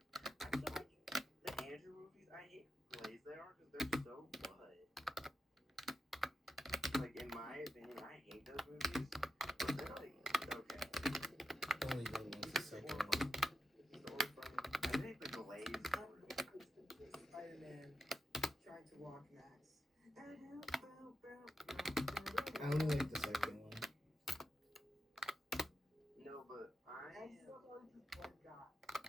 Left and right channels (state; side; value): normal; both; correlation 0.88